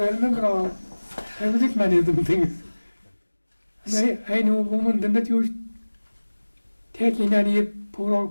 I remember all. I was at many of them things. And I knew a woman then that used taking any poor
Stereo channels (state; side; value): inverted; both; correlation -1.00